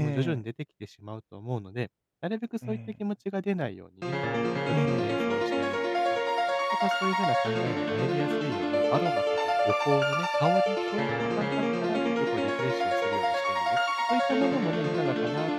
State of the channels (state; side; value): identical; both; correlation 1.00